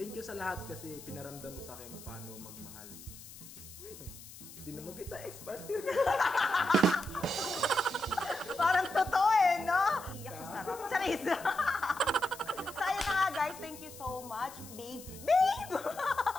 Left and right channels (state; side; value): noise; left; hiss, 16 dB below the sound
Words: you sa lahat kasi pinaramdam mo sa akin kung paano magmahal. Wait, hindi naman kita ex-partner. Parang totoo eh, no? Iyak sa sarap. Charis! So, ayun na nga guys. Thank you so much, babe. Babe!